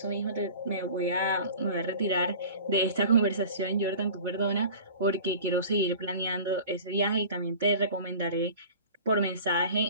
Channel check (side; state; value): both; inverted; correlation -0.41